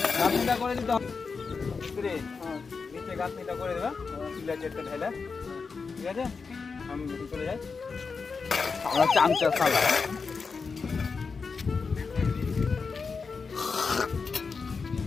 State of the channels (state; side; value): quieter; right; 4.9 dB